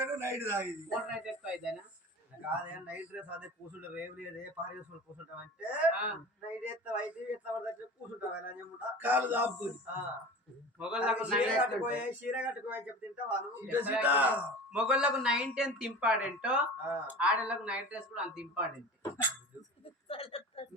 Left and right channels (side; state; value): both; normal; correlation 0.36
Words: night తాగింది కాదే నైట్ డ్రెస్ అదే కూర్చుంటావు రేవు లేదే పారి వేసుకొని కూర్చుంటావు అంటే నైట్ ఎత్తావు అయితే ఎట్లా పడితే కూర్చుంటావు అని చెప్పుకుంటా కాలు దాపుకొని చీర కట్టుకోని చెప్తే తింటావాను మొగళ్ళకు 9-10 ఇంపార్టెంట్ ఆడలకు నైట్ డ్రెస్ కూడా అంత ఇంపార్టెంట్